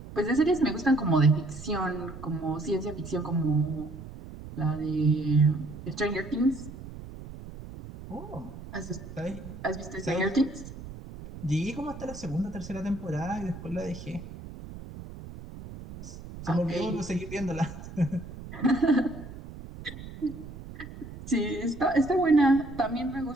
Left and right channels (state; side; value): noise; right; rumble, 13 dB below the sound